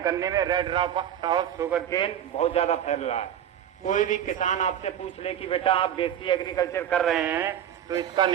गन्ने में रेड रॉट शुगर केन बहुत ज्यादा फैल रहा है। कोई भी किसान आपसे पूछ ले कि बेटा आप देसी एग्रीकल्चर कर रहे हैं तो इसका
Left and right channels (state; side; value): quieter; left; 10.1 dB